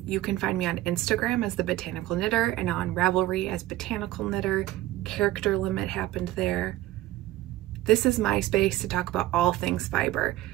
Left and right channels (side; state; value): left; quieter; 15.5 dB